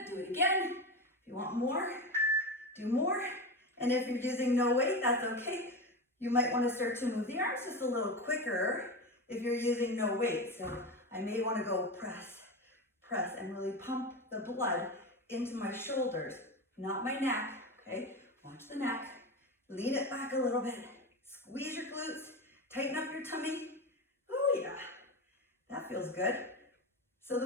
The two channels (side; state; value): both; normal; correlation 0.21